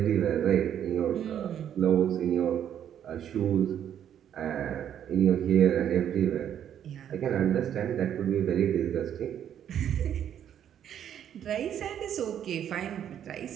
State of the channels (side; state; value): left; quieter; 9.7 dB